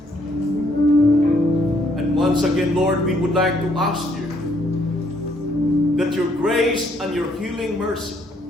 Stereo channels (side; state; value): both; normal; correlation 0.69